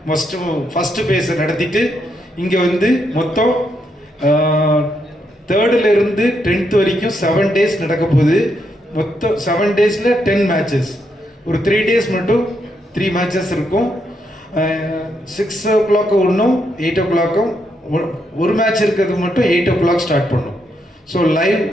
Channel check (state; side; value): normal; both; correlation 0.79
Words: ஃபஸ்ட்டு பேஸை நடத்திட்டு இங்கே வந்து மொத்தம் 3rd இருந்து 10th வரைக்கும் 7 days நடக்க போகுது. மொத்தம் 7 daysல 10 matches. ஒரு 3 days மட்டும் 3 matches இருக்கும். 6 o'clock ஒன்றும் 8 o'clock ஒரு மேட்ச் இருக்கிறது மட்டும் 8 o'clock ஸ்டார்ட் பண்ணும். ஸோ லைவ்